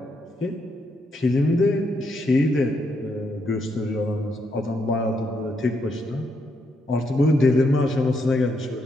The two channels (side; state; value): both; normal; correlation 0.78